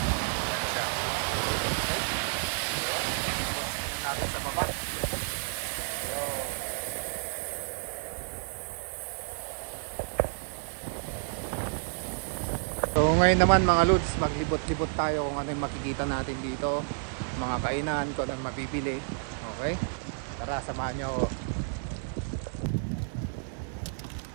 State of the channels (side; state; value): left; silent; digital silence